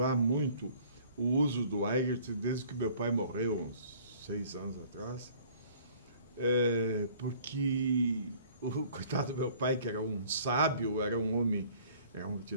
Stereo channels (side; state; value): both; inverted; correlation -0.54